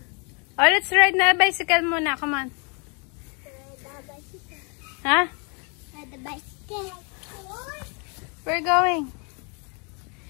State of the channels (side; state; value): right; quieter; 34.5 dB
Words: Oh, let's ride na bicycle muna. Come on. Ha? We're going.